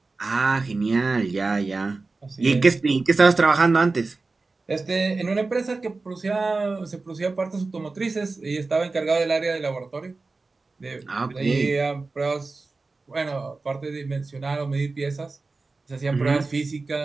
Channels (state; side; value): quieter; left; 3.7 dB